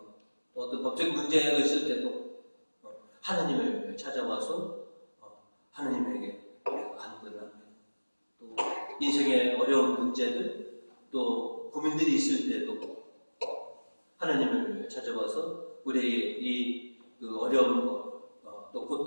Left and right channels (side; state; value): both; inverted; correlation -1.00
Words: 또 어떤 법적인 문제가 있을 때도 하나님을 찾아와서 하나님에게 간구를 합니다. 또 인생의 어려운 문제들, 또 고민들이 있을 때도 하나님을 찾아와서 우리의 그 어려운 것, 또